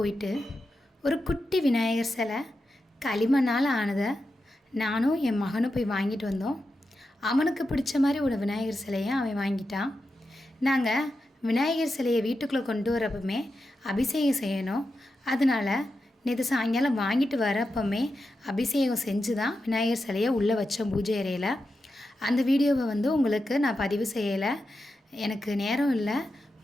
ஒரு குட்டி விநாயகர் சிலை களிமண்ணால் ஆனதை நானும் என் மகனும் போய் வாங்கிட்டு வந்தோம். அவனுக்கு பிடிச்ச மாதிரி ஒரு விநாயகர் சிலையை அவன் வாங்கிட்டான். நாங்கள் விநாயகர் சிலையை வீட்டுக்குள்ளே கொண்டு வரப்பமே அபிஷேகம் செய்யணும். அதனால் நேற்று சாயங்காலம் வாங்கிட்டு வரப்பமே அபிஷேகம் செஞ்சு தான் விநாயகர் சிலையை உள்ளே வச்சோம் பூஜை அறையில். அந்த வீடியோவை உங்களுக்கு நான் பதிவு செய்யலை. எனக்கு நேரம் இல்லை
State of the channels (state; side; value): normal; both; correlation 0.89